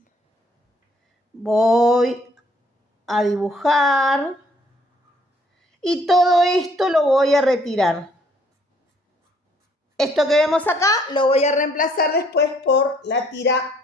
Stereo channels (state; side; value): normal; both; correlation 0.64